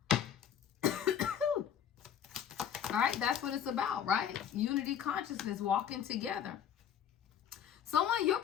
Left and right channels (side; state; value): right; quieter; 9.1 dB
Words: All right, that's what it's about, right? Unity consciousness, walking together. Someone, your